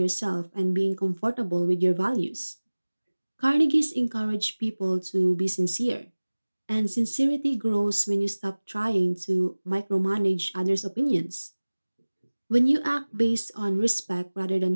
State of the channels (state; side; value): inverted; both; correlation -1.00